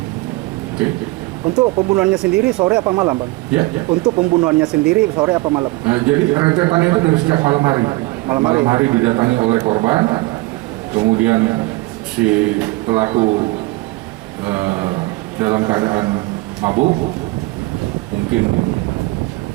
Oke. Untuk pembunuhannya sendiri sore apa malam, Bang? Ya. Untuk pembunuhannya sendiri sore apa malam? Jadi rentetannya itu dari sejak malam hari. Malam hari didatangi oleh korban, kemudian si pelaku dalam keadaan mabuk, mungkin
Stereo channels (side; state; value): left; quieter; 21.8 dB